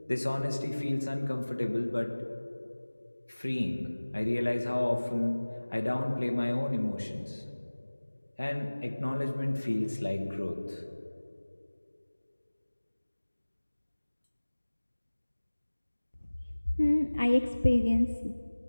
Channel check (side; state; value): both; inverted; correlation -1.00